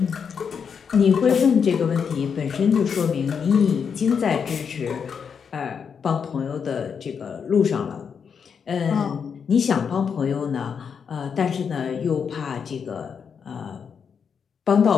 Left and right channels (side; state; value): right; quieter; 6.6 dB